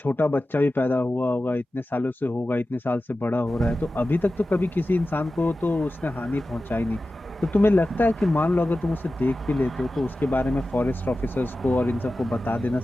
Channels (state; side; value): normal; both; correlation 0.94